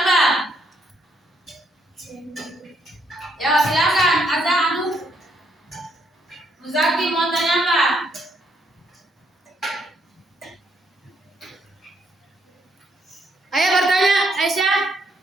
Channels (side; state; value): both; normal; correlation 0.73